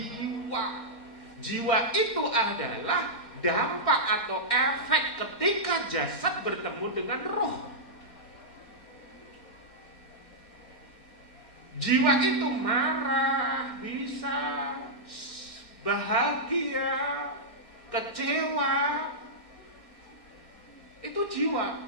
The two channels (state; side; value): late; right; 4.2 ms